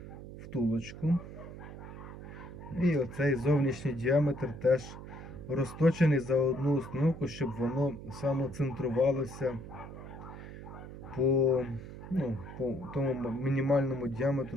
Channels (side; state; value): right; noise; hum, 12 dB below the sound